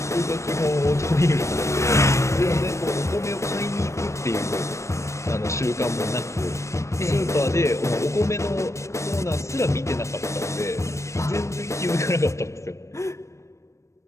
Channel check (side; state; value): right; late; 0.14 ms